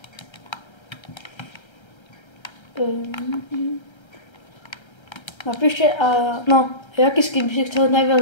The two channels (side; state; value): right; late; 1.3 ms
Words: Napíšte, jaký skin by si chcel